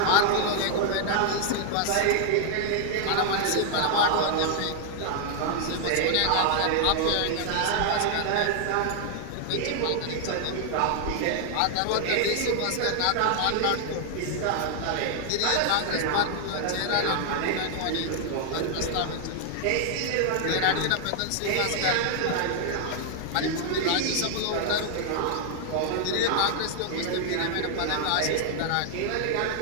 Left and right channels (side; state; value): both; different; correlation 0.00